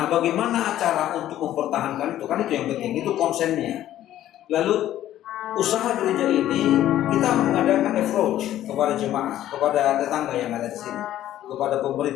bagaimana cara untuk mempertahankan itu? Kan itu yang penting, itu konsennya. Lalu usaha gereja ini kita mengadakan approach kepada jemaah, kepada tetangga yang ada di sini, kepada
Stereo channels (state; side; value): quieter; right; 12.7 dB